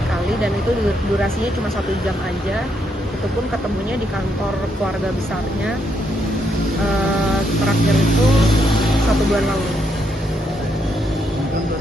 kali dan itu durasinya cuma 1 jam aja, itu pun ketemunya di kantor keluarga besarnya, terakhir itu 1 bulan lalu. kan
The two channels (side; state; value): both; normal; correlation 0.77